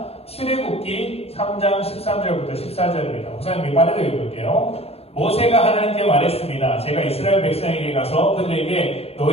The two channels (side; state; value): right; late; 0.29 ms